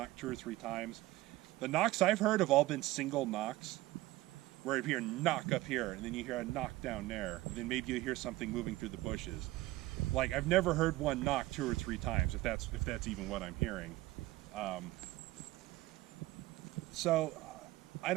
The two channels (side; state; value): left; quieter; 17.9 dB